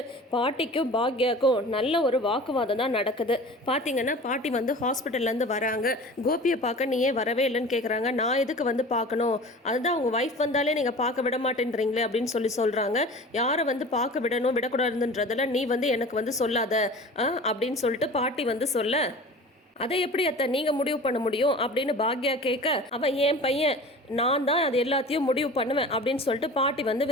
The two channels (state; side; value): normal; both; correlation 0.39